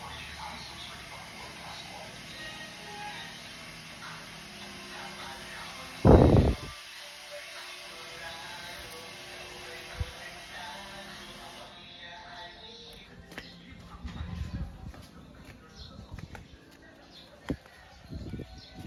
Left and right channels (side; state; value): both; identical; correlation 1.00